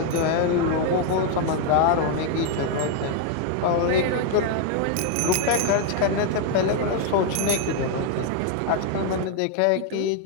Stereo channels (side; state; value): both; different; correlation 0.00